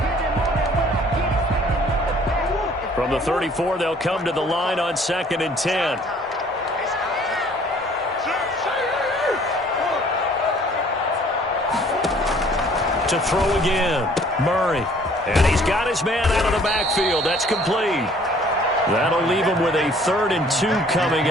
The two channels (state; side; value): normal; both; correlation 0.56